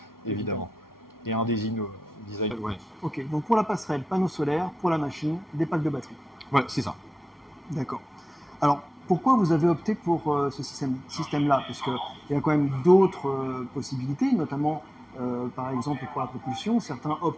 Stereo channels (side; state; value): both; normal; correlation 0.93